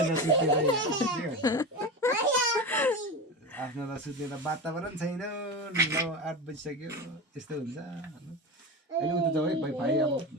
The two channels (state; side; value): normal; both; correlation 0.24